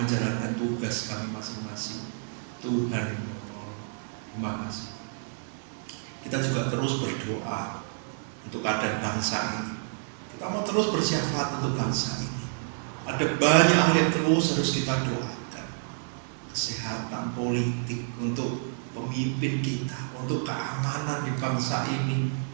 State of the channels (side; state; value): left; silent; digital silence